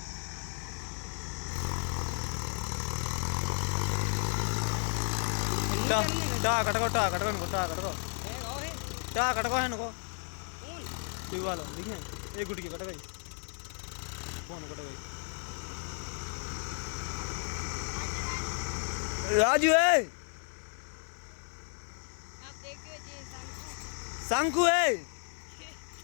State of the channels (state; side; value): silent; right; 55 dB below the other